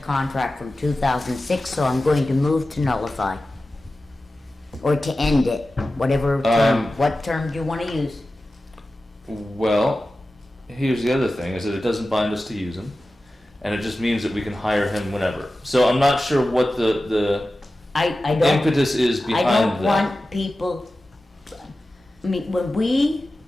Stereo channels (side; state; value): both; normal; correlation 0.94